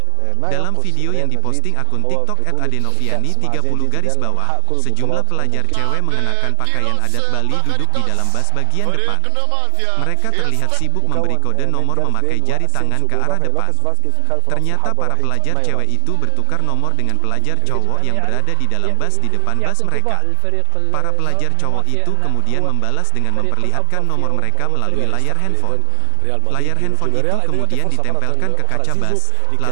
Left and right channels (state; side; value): different; both; correlation 0.00